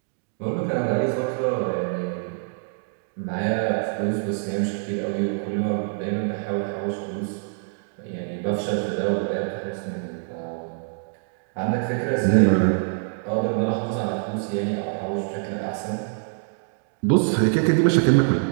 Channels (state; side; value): silent; left; 62 dB below the other